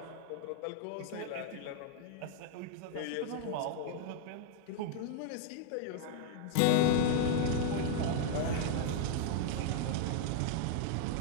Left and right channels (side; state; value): both; different; correlation 0.00